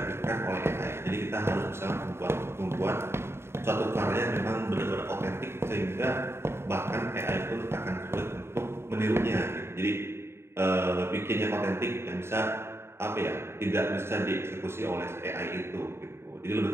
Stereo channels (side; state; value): left; late; 0.12 ms